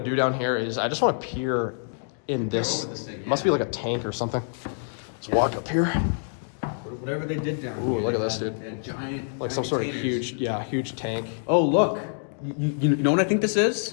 down here is I just wanna peer in this. over this thing, Must be like a tank or something. Let's walk up here. Whatever they did down Ooh, here. look at this, they dude. had giant, Like some sort of containers. huge tank. Oh, look. You know what I think this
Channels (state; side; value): silent; right; digital silence